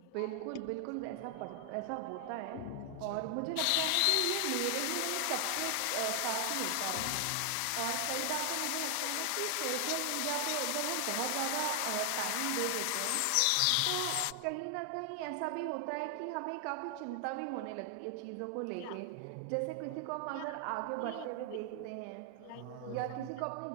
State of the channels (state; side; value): different; both; correlation 0.00